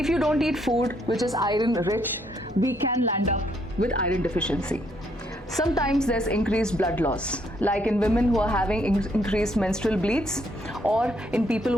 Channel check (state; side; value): normal; both; correlation 0.71